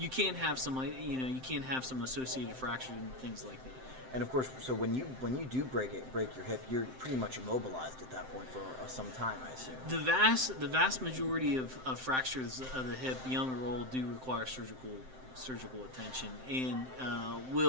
can have some associated fractures and things like that. And of course, so when you do break your hip, you're pretty much immobilized at that point for some time, I assume. The vast majority of fractures of the hip, young or old, do require surgical attention and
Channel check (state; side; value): late; left; 7.7 ms